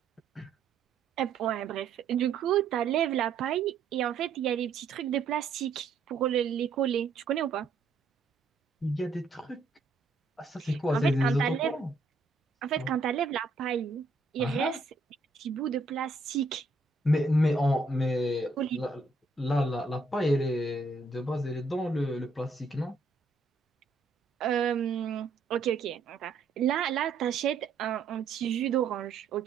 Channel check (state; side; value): quieter; left; 3.8 dB